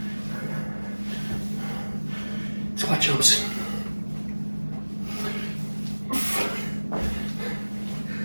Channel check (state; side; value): inverted; both; correlation -1.00